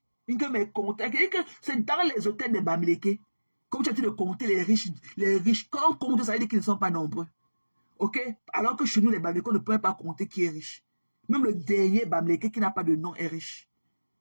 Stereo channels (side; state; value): both; inverted; correlation -1.00